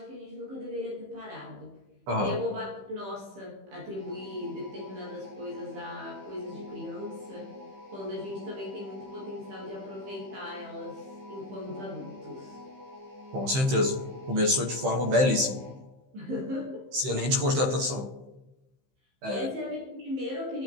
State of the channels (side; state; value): left; late; 15 ms